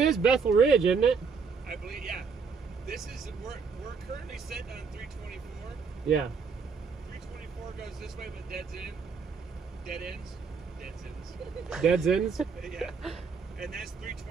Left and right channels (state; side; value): quieter; left; 5.5 dB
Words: Bethel Ridge, isn't it? I believe, yeah. This is, we're currently sitting on 324. Yeah. 324 goes this way, but dead ends. Dead ends. Dead ends? Yeah. And that's